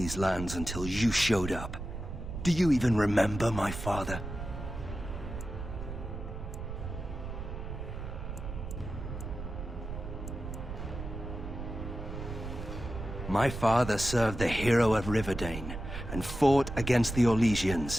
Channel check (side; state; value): right; noise; rumble, 8 dB below the sound